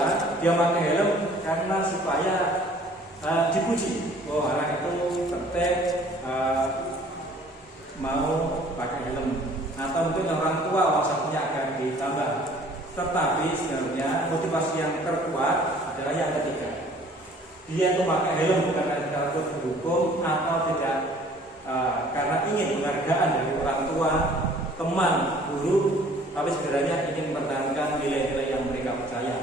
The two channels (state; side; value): normal; both; correlation 0.54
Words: dia memakai helm karena supaya dipuji. Oh, anak itu tertib, mau pakai helm. Atau mungkin orang tua maksudnya akan ditambah. Tetapi sebenarnya motivasi yang terkuat adalah yang ketiga. Dia itu pakai helm bukan karena takut dihukum, atau tidak karena ingin penghargaan dari orang tua, teman, guru, tapi sebenarnya ingin mempertahankan nilai-nilai yang mereka